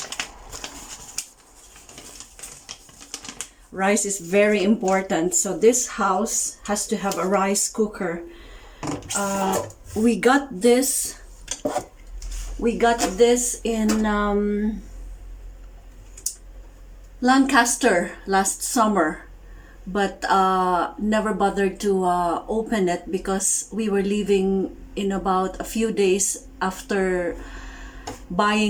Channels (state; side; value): identical; both; correlation 1.00